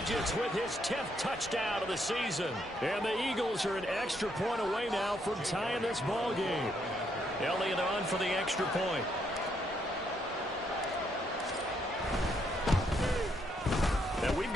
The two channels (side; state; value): both; normal; correlation 0.74